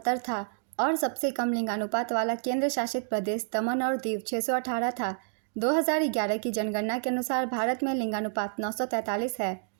था और सबसे कम लिंगानुपात वाला केंद्र शासित प्रदेश दमन और दीव 618 था। 2011 की जनगणना के अनुसार भारत में लिंगानुपात 943 है।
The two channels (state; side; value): silent; left; digital silence